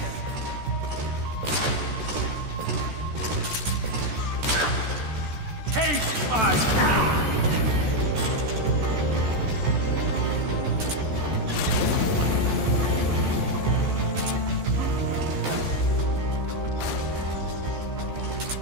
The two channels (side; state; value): left; late; 14 ms